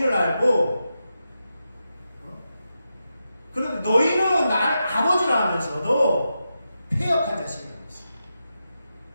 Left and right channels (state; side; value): inverted; both; correlation -0.88